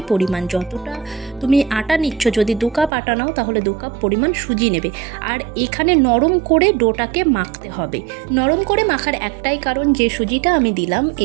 পরিমাণ। যতটা তুমি আটা নিচ্ছ, যদি 2 কাপ আটা নাও তাহলে 2 কাপ পরিমাণ সুজি নেবে। আর এখানে নরম করে ডোটাকে মাখতে হবে। নরম করে মাখার একটাই কারণ, যে সুজিটা আমি দিলাম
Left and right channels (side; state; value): left; drops out; at 2.9 s